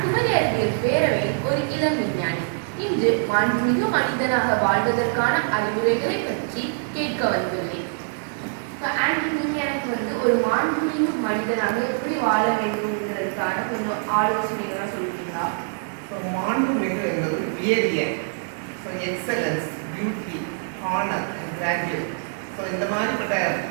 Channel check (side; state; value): left; silent; digital silence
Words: குமரி அறிவியல் பேரவையில் ஒரு இளம் விஞ்ஞானி. இன்று மாண்புமிகு மனிதனாக வாழ்வதற்கான அறிவுரைகளை பற்றி கேட்க வந்துள்ளேன். நீங்க எனக்கு ஒரு மாண்புமிகு மனிதனாக எப்படி வாழ வேண்டும்ன்றதுக்கான கொஞ்சம் ஆலோசனைகளாக சொல்லுவீங்களா? மாண்புமிகு என்பது உயரிய, excellence, beauty, honour and graduate. இந்த மாதிரிப்பட்ட